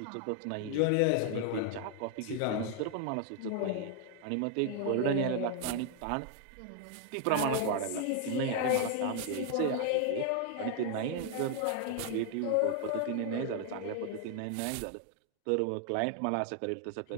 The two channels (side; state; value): both; different; correlation 0.00